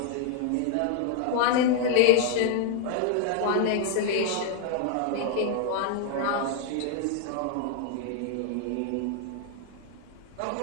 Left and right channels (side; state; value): both; different; correlation 0.00